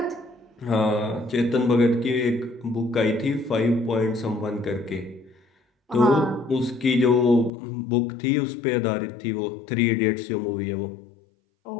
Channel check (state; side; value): drops out; right; at 7.5 s